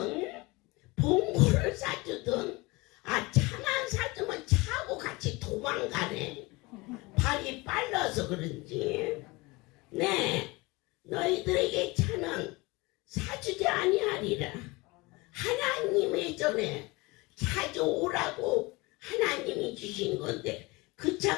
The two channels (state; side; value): quieter; right; 23.9 dB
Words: 봉고를 사주든 차만 사주면 차하고 같이 도망가네. 발이 빨라서 그런지. 네, 너희들에게 차는 사주지 아니하리라. 하나님의 전에 찾아오라고 하나님이 주신 건데 그 차